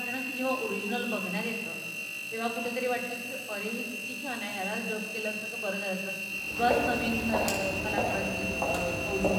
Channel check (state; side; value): identical; both; correlation 1.00